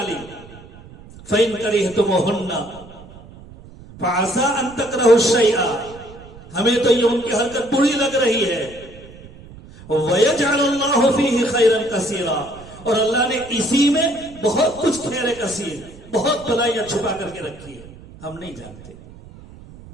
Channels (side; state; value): right; noise; rumble, 19 dB below the sound